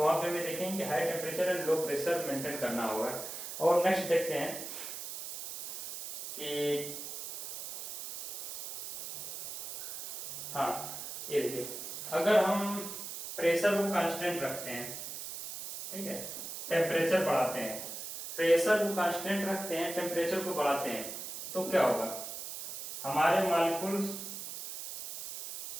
वहां पे हमें देखेंगे कि high temperature and low pressure maintain करना होगा। और नेक्स्ट देखते हैं कि हाँ, ये देखिए, अगर हम प्रेशर को कांस्टेंट रखते हैं, ठीक है, टेम्परेचर बढ़ाते हैं, प्रेशर को कांस्टेंट रखते हैं, टेम्परेचर को बढ़ाते हैं, तो क्या होगा, हमारे मॉलिक्यूल्स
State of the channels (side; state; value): right; noise; hiss, 8 dB below the sound